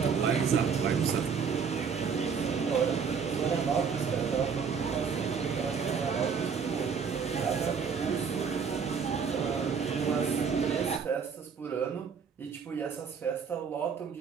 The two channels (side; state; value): left; quieter; 6.2 dB